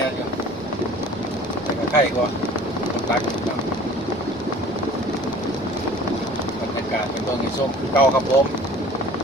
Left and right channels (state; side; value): normal; both; correlation 0.47